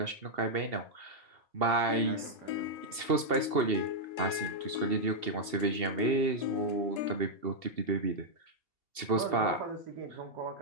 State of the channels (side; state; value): left; late; 2.7 ms